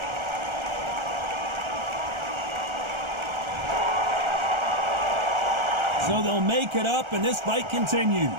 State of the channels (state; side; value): late; left; 1.3 ms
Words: So they'll make it up, and this fight continues.